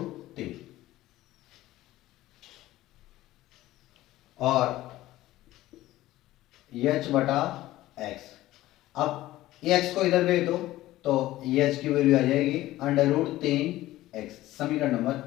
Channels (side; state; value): right; quieter; 16.0 dB